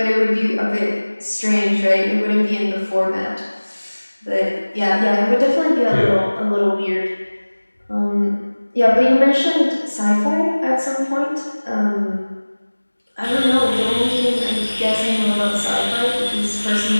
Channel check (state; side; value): inverted; both; correlation -1.00